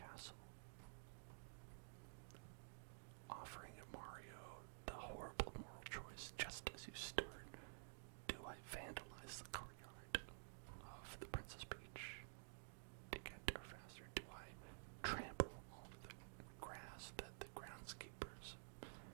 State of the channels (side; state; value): left; silent; digital silence